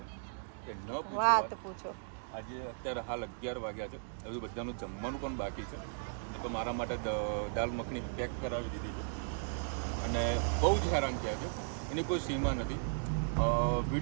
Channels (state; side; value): silent; left; digital silence